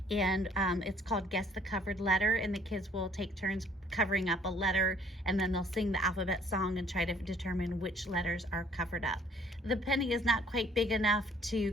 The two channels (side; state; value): both; normal; correlation 0.60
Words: And it's called Guess the Covered Letter, and the kids will take turns covering up a letter, and then they'll sing the alphabet song and try to determine which letters are covered up. The penny is not quite big enough